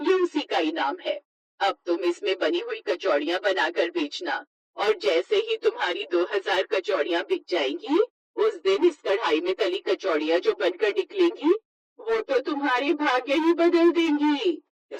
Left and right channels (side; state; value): both; identical; correlation 1.00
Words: उसी का इनाम है। अब तुम इसमें बनी हुई कचौड़ियाँ बनाकर बेचना, और जैसे ही तुम्हारी 2000 कचौड़ियाँ बिक जाएंगी, उस दिन इस कढ़ाई में तली कचौड़ियाँ जो बनकर निकलेंगी, वो तो तुम्हारे भाग्य ही बदल देंगी। ये